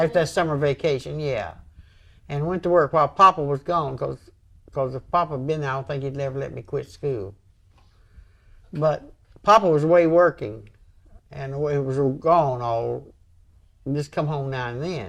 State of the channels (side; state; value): both; identical; correlation 1.00